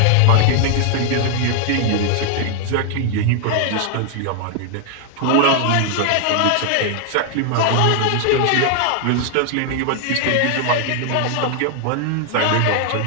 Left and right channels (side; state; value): both; different; correlation 0.00